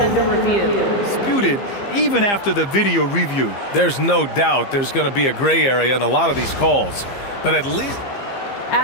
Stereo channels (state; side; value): late; right; 15 ms